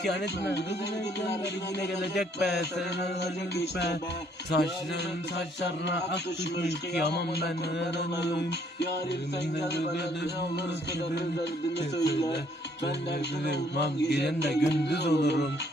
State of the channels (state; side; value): normal; both; correlation 0.65